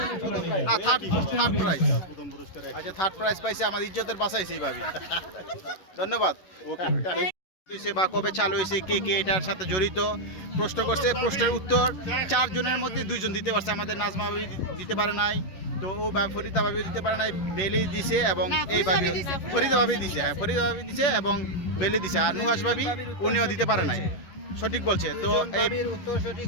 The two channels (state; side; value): late; right; 11 ms